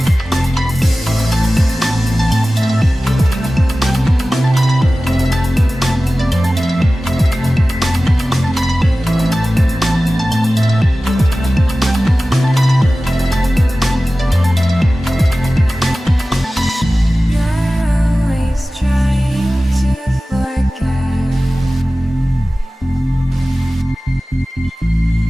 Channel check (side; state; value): both; normal; correlation 0.96